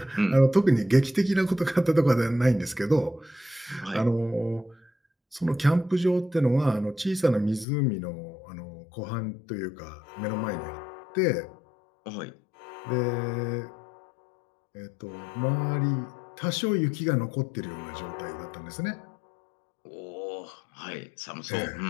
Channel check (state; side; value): drops out; right; at 7.7 s